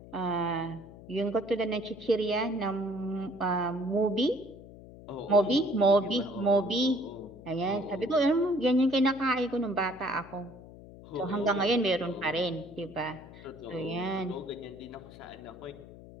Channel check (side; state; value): left; noise; hum, 17 dB below the sound